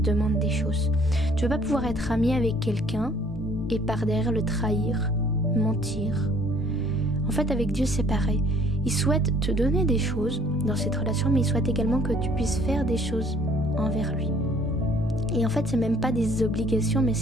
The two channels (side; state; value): both; normal; correlation 0.58